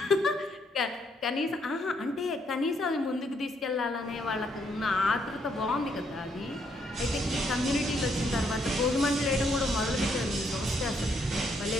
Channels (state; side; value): normal; both; correlation 0.73